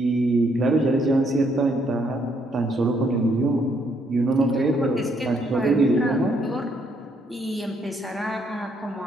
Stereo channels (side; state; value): both; normal; correlation 0.72